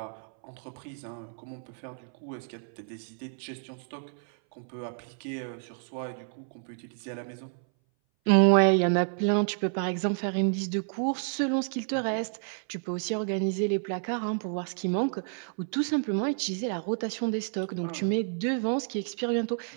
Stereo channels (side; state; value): left; silent; 58 dB below the other